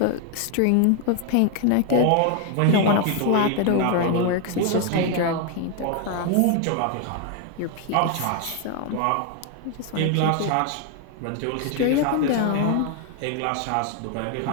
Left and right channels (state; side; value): different; both; correlation 0.01